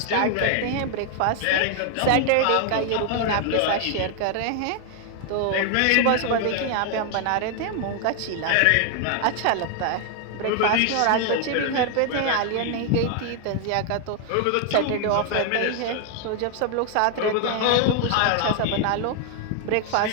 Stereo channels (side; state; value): both; different; correlation 0.00